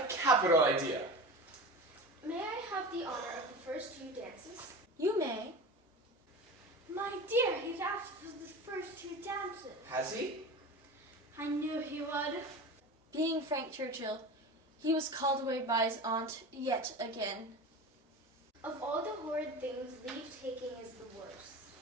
capital idea. May I have the honor of the first 2 dances? You may. My dear, he's asked for the first 2 dances. Has he? I knew he would. Being Frank Churchill, he was called away by his aunt yet again. Of all the horrid things, leave-taking is the worst.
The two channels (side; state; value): both; normal; correlation 0.31